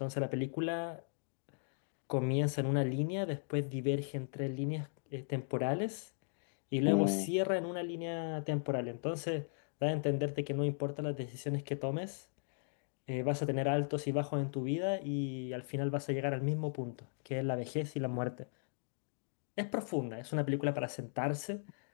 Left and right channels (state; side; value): silent; right; digital silence